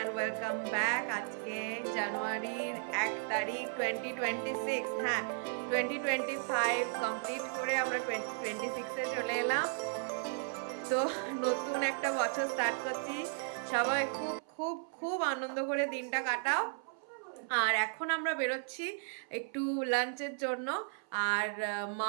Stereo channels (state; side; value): silent; left; 54 dB below the other